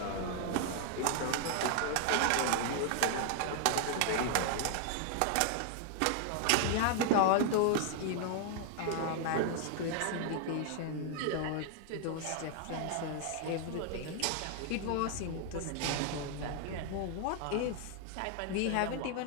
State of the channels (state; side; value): different; both; correlation 0.00